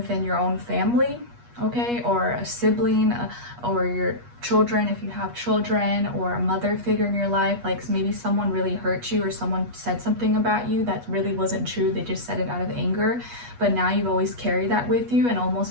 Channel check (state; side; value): late; left; 8.3 ms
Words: your own family, okay, or a sibling, or your children, if you have children, or a mother figure in your life. Like maybe someone really hurt you, or someone said something about you that really wasn't true. They just said it out of anger, but now you've always carried that with you, and